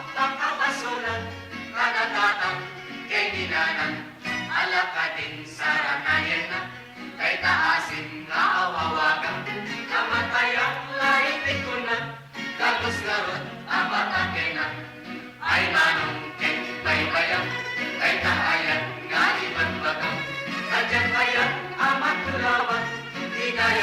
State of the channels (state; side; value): identical; both; correlation 1.00